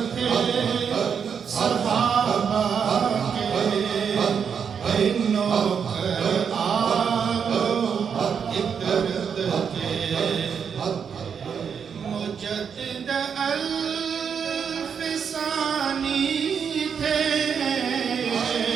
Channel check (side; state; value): left; quieter; 7.0 dB